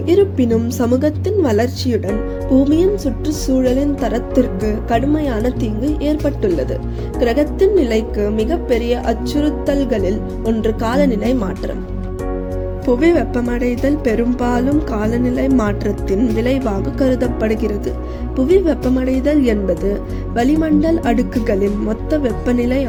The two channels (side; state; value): both; identical; correlation 1.00